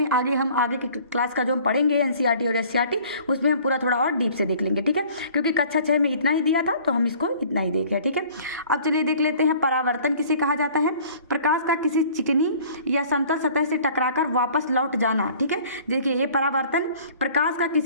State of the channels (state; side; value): inverted; both; correlation -0.51